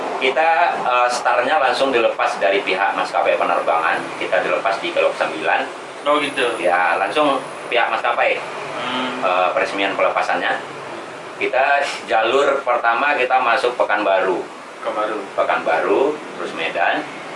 Kita startnya langsung dilepas dari pihak maskapai penerbangan. Kita dilepas di Kelok 9. Oh gitu. Ya, langsung pihak maskapai peresmian pelepasannya. Kita jalur pertama kita masuk Pekanbaru. Kemaru. Pekanbaru, terus Medan,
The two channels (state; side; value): identical; both; correlation 1.00